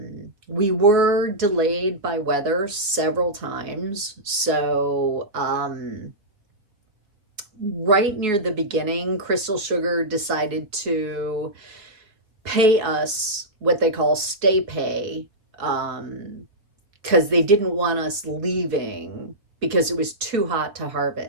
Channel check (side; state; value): left; late; 4.4 ms